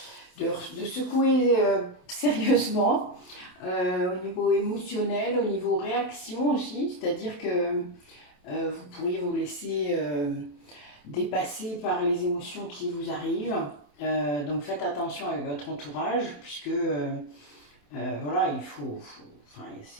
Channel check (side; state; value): right; late; 27 ms